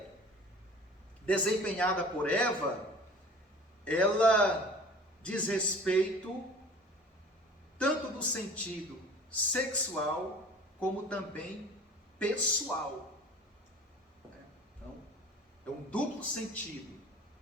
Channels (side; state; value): both; normal; correlation 0.44